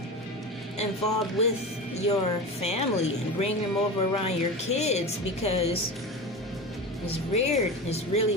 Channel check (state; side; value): normal; both; correlation 0.27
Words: involved with your family and bring them over around your kids, because it's weird. It's